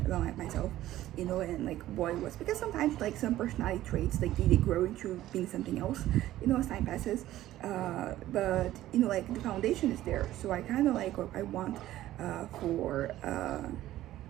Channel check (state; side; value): quieter; left; 14.3 dB